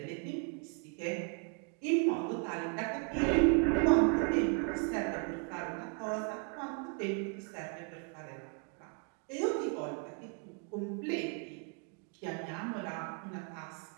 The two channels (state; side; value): quieter; left; 38.0 dB